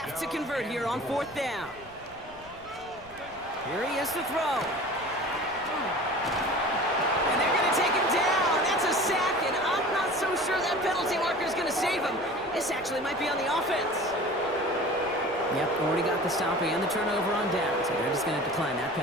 to convert here on 4th down. Here he is to throw. And they're going to take him down. That's a sack, and I'm not so sure that penalty marker is going to save him. This actually might be on the offense. Yep, already got the stop and the turnover on down, so they're just going to decline that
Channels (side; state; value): right; noise; rumble, 24 dB below the sound